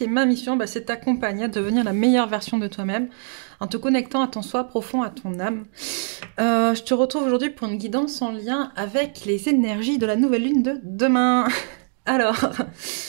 ma mission c'est de t'accompagner à devenir la meilleure version de toi-même en te connectant à ton soi profond, à ton âme. Je te retrouve aujourd'hui pour une guidance en lien avec les énergies de la nouvelle lune de demain. Alors,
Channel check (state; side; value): silent; left; digital silence